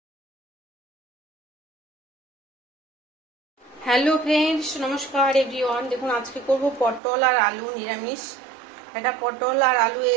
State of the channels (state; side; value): drops out; left; at 7.0 s